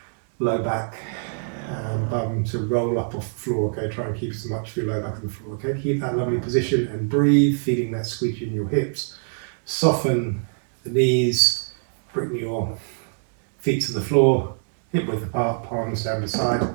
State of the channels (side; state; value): left; silent; digital silence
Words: low back and bum to roll up off the floor, okay, try and keep as much of your low back on the floor, okay, keep that lovely position and breathe, feeling that squeeze in your hips, soften the knees, bring your feet to the floor, hip width apart, palms down the side,